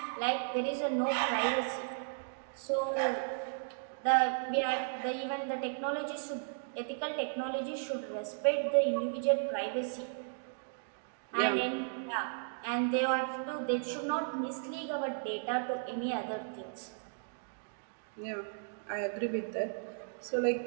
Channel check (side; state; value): left; silent; digital silence